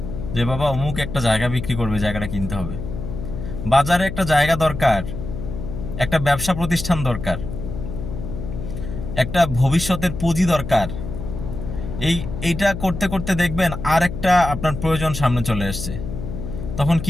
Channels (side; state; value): left; noise; hum, 7 dB below the sound